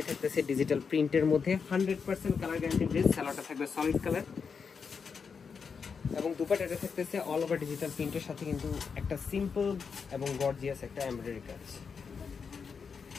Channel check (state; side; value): quieter; right; 5.8 dB